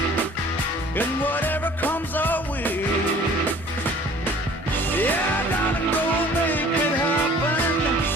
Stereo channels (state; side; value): normal; both; correlation 0.50